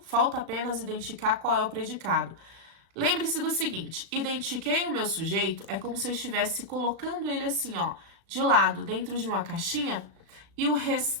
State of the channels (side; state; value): left; late; 37 ms